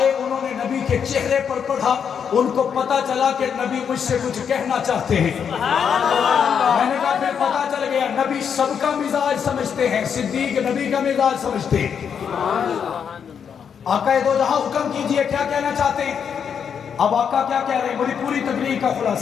انہوں نے نبی کے چہرے پر پڑھا، ان کو پتا چلا کہ نبی مجھ سے کچھ کہنا چاہتے ہیں۔ میں نے کہا پھر پتا چل گیا نبی سب کا مزاج سمجھتے ہیں، صدیق نبی کا مزاج سمجھتے ہیں۔ آقا دو جہاں حکم کیجئے کیا کہنا چاہتے ہیں؟ اب آقا کیا کہہ رہے ہیں، بڑی پوری تقریر کا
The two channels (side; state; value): right; quieter; 7.4 dB